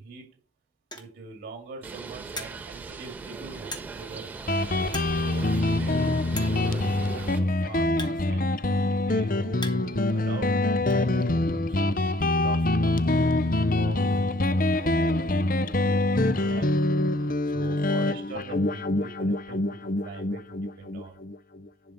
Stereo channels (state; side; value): normal; both; correlation 0.61